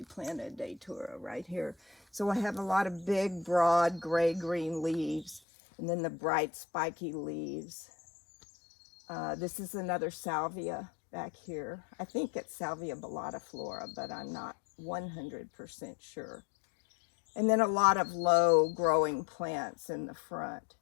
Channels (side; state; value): right; drops out; at 5.4 s